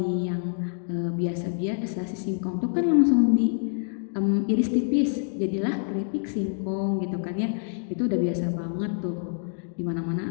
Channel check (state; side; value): silent; right; digital silence